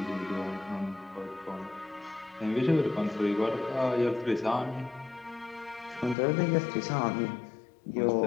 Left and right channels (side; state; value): right; drops out; at 6.2 s